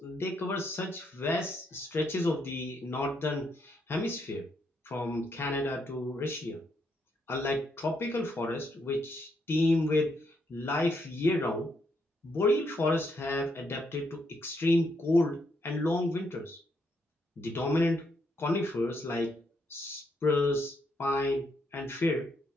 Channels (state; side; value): normal; both; correlation 0.76